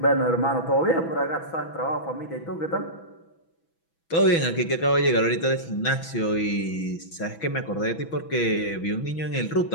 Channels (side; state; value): right; late; 6.1 ms